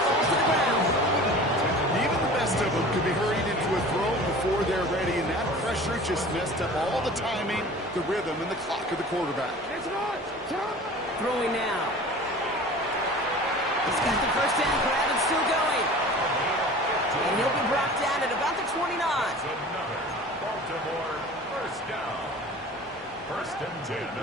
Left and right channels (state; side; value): noise; left; hum, 29 dB below the sound